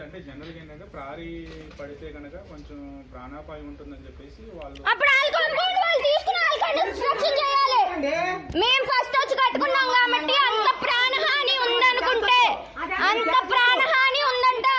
అంటే జనరల్ గా ఏంటంటే ప్రారీ పడితే కనుక కొంచెం ప్రాణాపాయం ఉంటుందని చెప్పేసి వాళ్ళు అప్పుడు వాళ్ళు తీసుకుని కన్స్ట్రక్షన్ చేయాలి. మేము ఫస్ట్ వచ్చి కట్టుకున్నాం కాబట్టి అంత ప్రాణహాని ఉందనుకుంటే, అంత ప్రాణహాని ఉందంటే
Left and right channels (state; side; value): identical; both; correlation 1.00